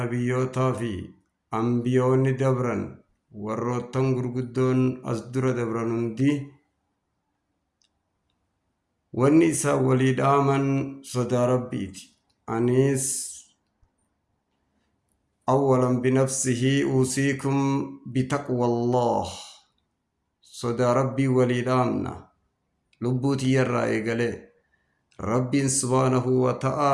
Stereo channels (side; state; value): both; identical; correlation 1.00